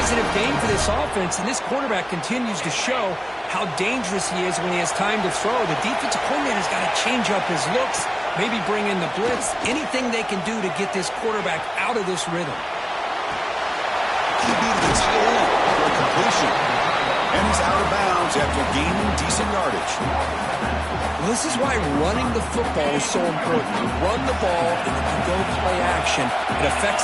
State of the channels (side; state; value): both; identical; correlation 1.00